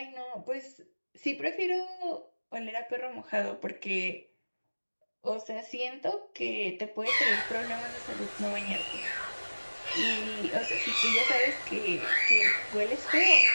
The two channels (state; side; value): inverted; both; correlation -1.00